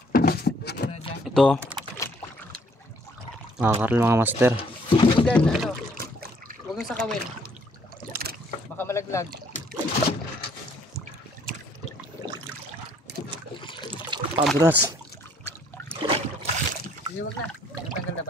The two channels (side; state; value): both; normal; correlation 0.63